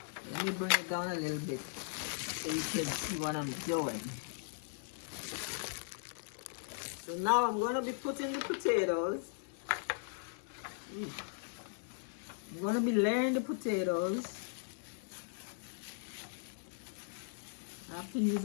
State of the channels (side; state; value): right; silent; digital silence